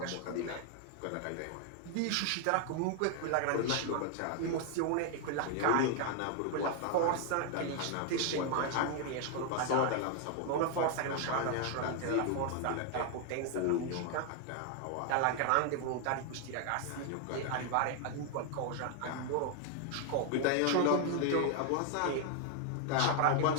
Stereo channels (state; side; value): different; both; correlation 0.00